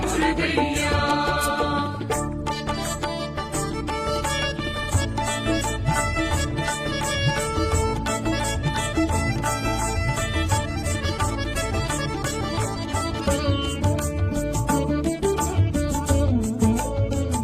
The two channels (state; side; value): identical; both; correlation 1.00